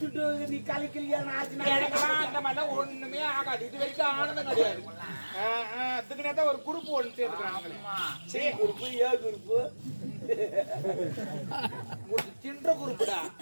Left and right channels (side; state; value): both; inverted; correlation -1.00